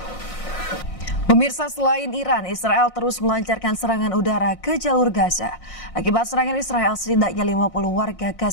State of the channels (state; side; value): late; right; 5.6 ms